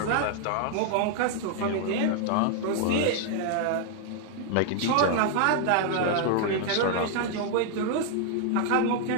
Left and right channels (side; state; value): both; different; correlation 0.00